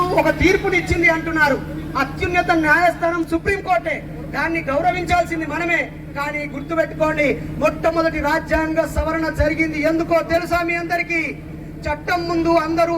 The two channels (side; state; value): both; identical; correlation 1.00